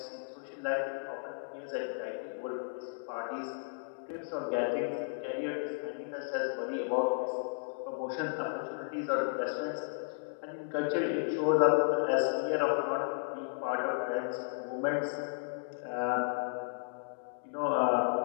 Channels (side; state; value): right; silent; digital silence